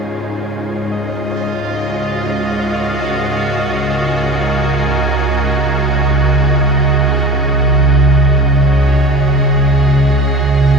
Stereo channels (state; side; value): normal; both; correlation 0.38